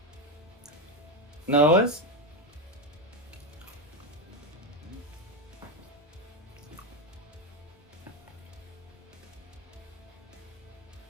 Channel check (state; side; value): normal; both; correlation 0.11